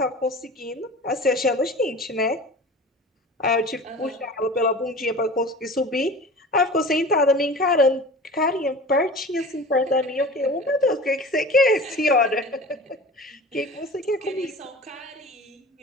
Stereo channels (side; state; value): both; normal; correlation 0.37